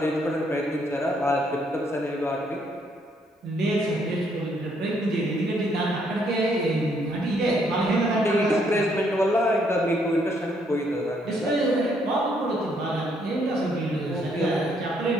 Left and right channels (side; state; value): both; normal; correlation 0.70